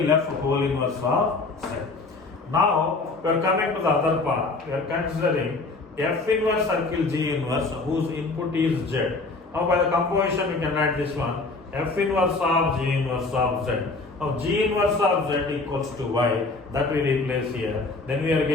F whole inverse of Z. Now we are coming to the other part. We are considering F inverse circle G inverse whose input is Z. Now by the composition we can write this one, F inverse of G inverse of Z. Now G inverse of Z equals to Y, that we replace here. Then we are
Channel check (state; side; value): quieter; right; 3.6 dB